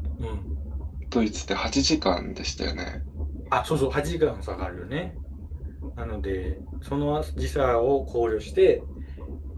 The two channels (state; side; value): identical; both; correlation 1.00